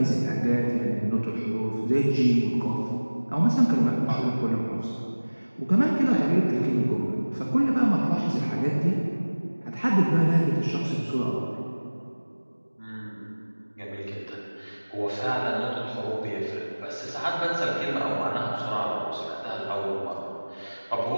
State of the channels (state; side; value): inverted; both; correlation -1.00